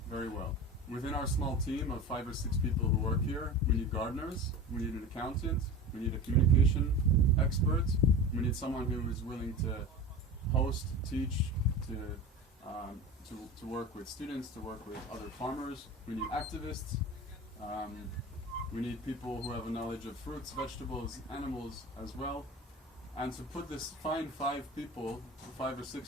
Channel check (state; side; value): normal; both; correlation 0.32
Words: very well. Within our small team of 5 or 6 people who work here, we need gardeners, we need an accountant, we need a communication expert, we need someone who is willing to host, teach, to work with students, to work with other farmers. We need activists. We need people who have a knowledge of fruits, vegetables, animals as well. And to put this, find 5 or